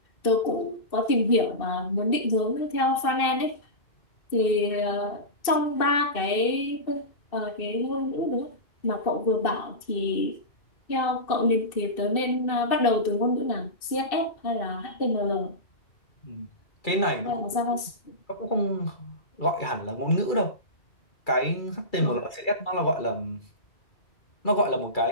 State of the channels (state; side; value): late; right; 2.6 ms